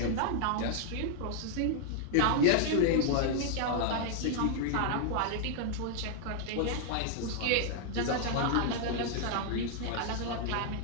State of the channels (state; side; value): different; both; correlation 0.00